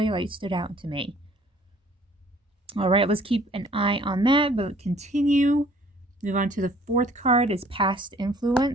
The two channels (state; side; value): normal; both; correlation 0.56